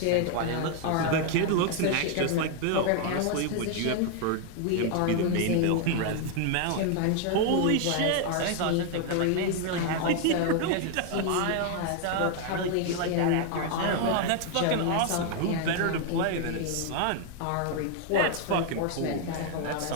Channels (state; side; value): different; both; correlation 0.00